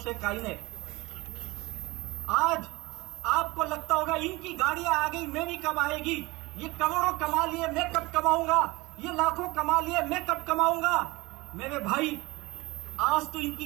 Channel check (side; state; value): left; quieter; 22.4 dB